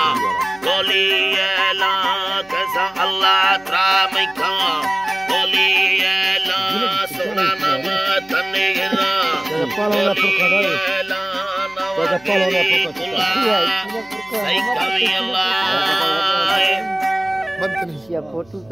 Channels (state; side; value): noise; left; hum, 29 dB below the sound